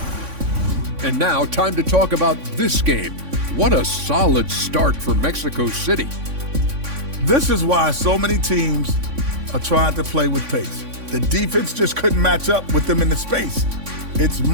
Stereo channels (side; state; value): left; late; 3.5 ms